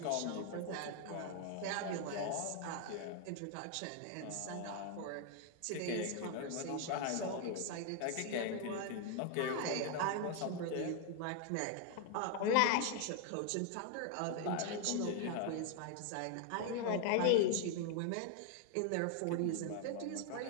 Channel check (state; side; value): different; both; correlation 0.00